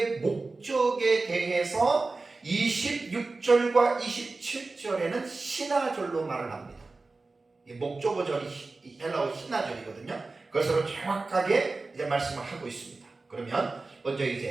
목적에 대해서 26절과 27절에는 신화절로 말을 합니다. 목적어절이 헬라어 신화절이거든요. 그것으로 정확하게 이제 말씀을 하고 있습니다. 그러면 먼저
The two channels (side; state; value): left; quieter; 3.6 dB